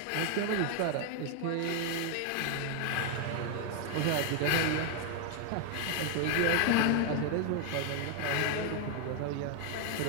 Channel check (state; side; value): different; both; correlation 0.01